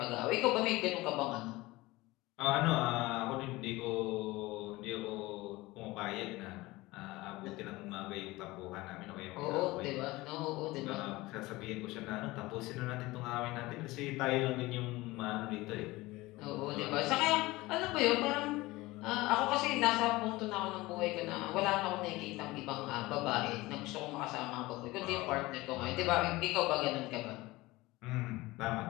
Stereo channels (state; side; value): quieter; right; 20.2 dB